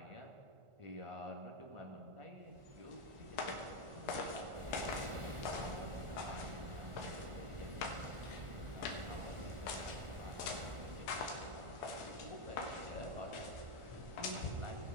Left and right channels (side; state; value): left; late; 1.4 ms